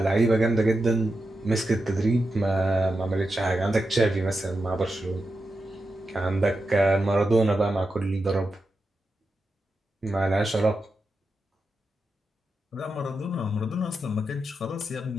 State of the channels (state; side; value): normal; both; correlation 0.88